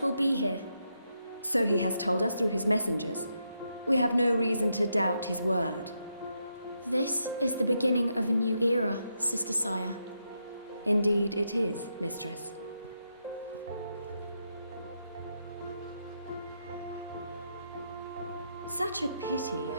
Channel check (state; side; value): inverted; both; correlation -0.82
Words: will be here. So he has told us through his messengers. We have no reason to doubt his word. This is the beginning of a new era, Sister Saya. Indeed it is, Mistress. Such a pity